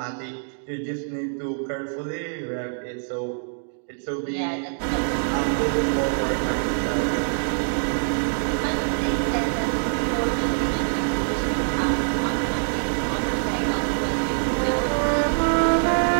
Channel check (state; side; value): silent; left; 62 dB below the other